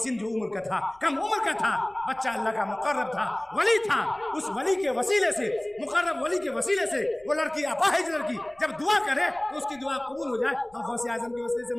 जो उम्र का था, कम उम्र का था, बच्चा अल्लाह का मुकर्रब था, वली था, उस वली के वसीले से, मुकर्रब वली के वसीले से वो लड़की, अपाहिज लड़की जब दुआ करे तो उसकी दुआ कबूल हो जाए। हम गौसे आजम के वसीले से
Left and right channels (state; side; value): noise; left; rumble, 30 dB below the sound